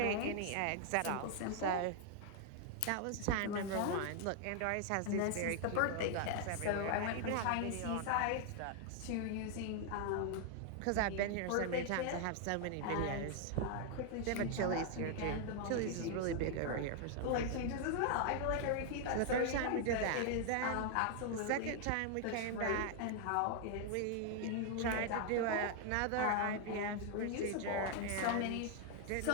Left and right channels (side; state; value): both; different; correlation 0.00